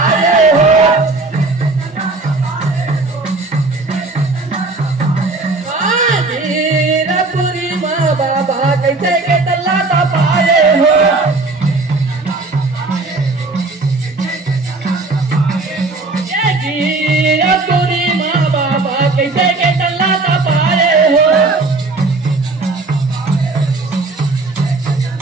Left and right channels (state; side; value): quieter; left; 3.4 dB